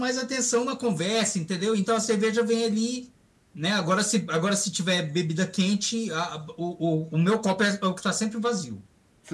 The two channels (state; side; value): identical; both; correlation 1.00